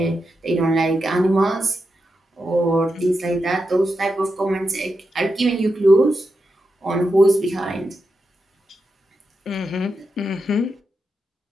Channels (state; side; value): normal; both; correlation 0.87